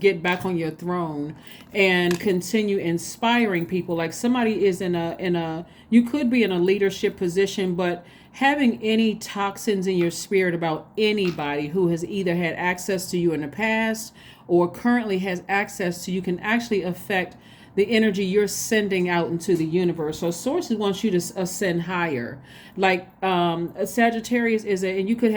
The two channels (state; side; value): identical; both; correlation 1.00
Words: back on your throne and continue inspiring people. Like somebody is in a you could be in a leadership position, but having any toxins in your spirit about anybody who has either had access to you in the past or currently has access to you can actually affect the energy you're sending out into the universe. So Source wants you to ascend higher. Like a Sagittarius and you could